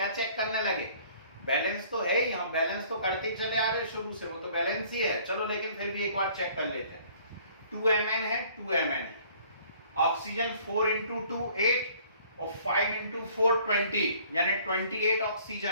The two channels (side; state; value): both; inverted; correlation -0.56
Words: चेक करने लगे? बैलेंस तो है ही, हम बैलेंस तो करते ही चले आ रहे शुरू से, वो तो बैलेंस ही है। चलो लेकिन फिर भी एक बार चेक कर लेते हैं। 2 Mn है, 2 Mn है, ऑक्सीजन 4 इंटू 2 8 और 5 इंटू 4 20, यानी 28